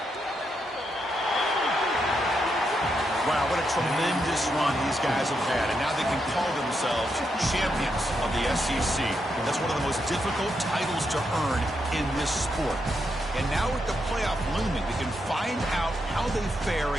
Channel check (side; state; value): both; normal; correlation 0.82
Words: Wow, what a tremendous run these guys have had, and now they can call themselves champions of the SEC. That's one of the most difficult titles to earn in this sport. And now with the playoff looming, we can find out how they fare